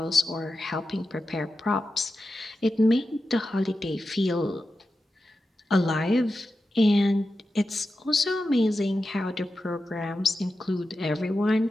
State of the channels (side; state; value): both; normal; correlation 0.91